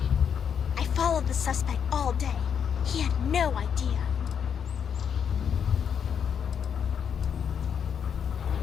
I followed the suspect all day. He had no idea.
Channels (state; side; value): quieter; right; 7.6 dB